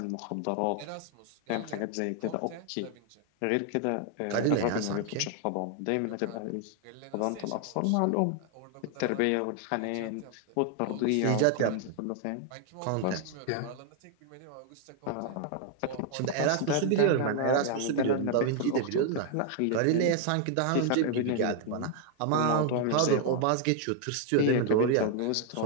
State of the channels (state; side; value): different; both; correlation 0.00